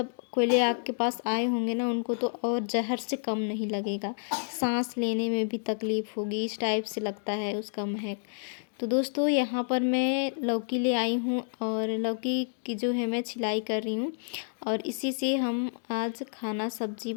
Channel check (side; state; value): right; silent; digital silence